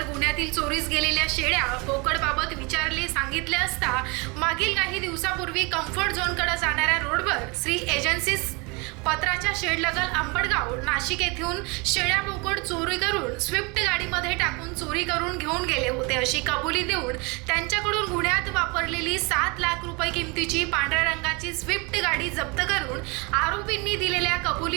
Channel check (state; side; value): quieter; left; 28.5 dB